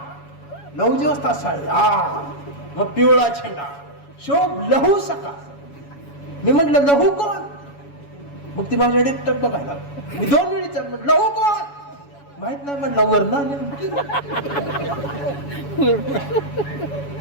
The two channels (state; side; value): late; right; 7.1 ms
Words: 9 वाजता साडी, मग पिवळा झेंडा, शोभ लहू सकाळ. मी म्हटलं लहू कोण? मग ती माझ्याकडे टक बघायला. मी 2 वेळी म्हटलं लहू कोण? माहित नाही म्हटलं, वरण